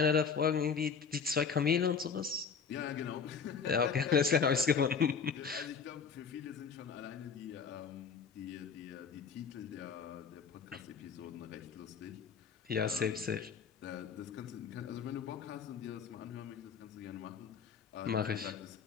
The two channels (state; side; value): quieter; right; 6.0 dB